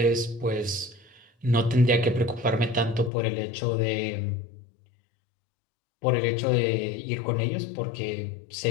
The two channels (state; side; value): drops out; right; at 3.1 s